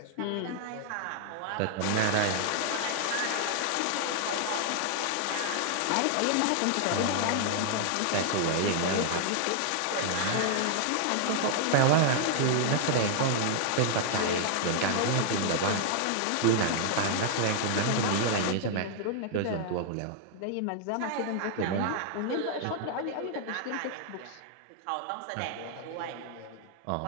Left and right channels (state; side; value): different; both; correlation 0.00